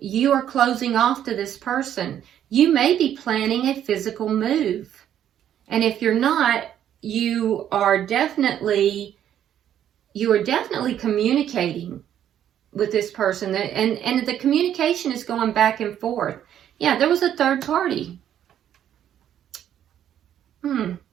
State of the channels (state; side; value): quieter; left; 10.4 dB